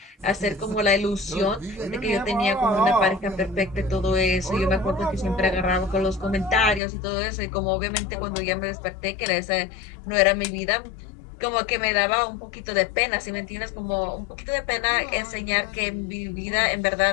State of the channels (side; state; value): right; drops out; at 6.8 s